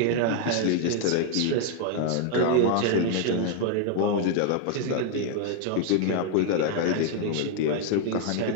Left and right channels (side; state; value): both; different; correlation 0.00